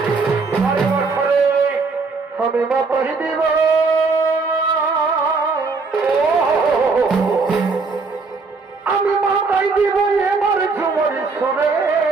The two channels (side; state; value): left; quieter; 4.3 dB